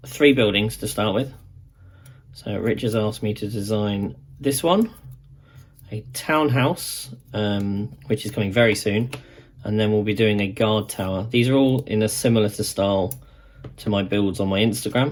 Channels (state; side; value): identical; both; correlation 1.00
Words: 3 buildings to start with. So Rich has asked me to design this one, a townhouse, which is coming very soon, and then we'll be doing a guard tower. These are all in a similar style to my builds on my